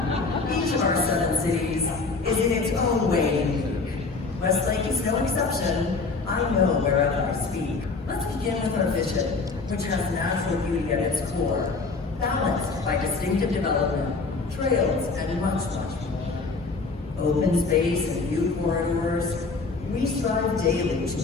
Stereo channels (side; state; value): right; quieter; 4.1 dB